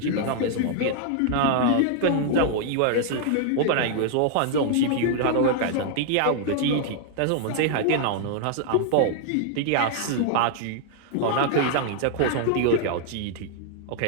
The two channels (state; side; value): different; both; correlation 0.00